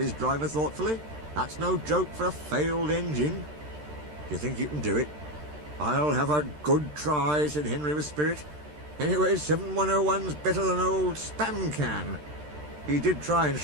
driver thoughtfully. "That's no joke for a failed engine. Do you think you can do it?" "I'll have a good try," said Henry with spirit. "Anyway, 7101's better than old spam can. He did try and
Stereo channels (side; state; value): left; late; 13 ms